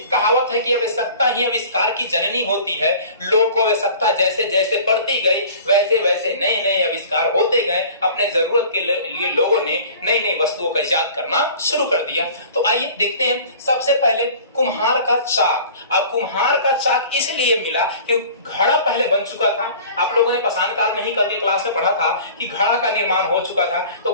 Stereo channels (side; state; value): both; inverted; correlation -0.45